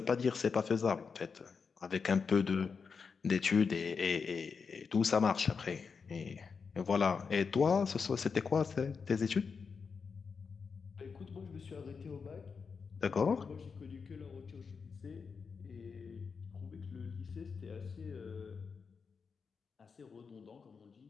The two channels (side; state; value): right; quieter; 5.5 dB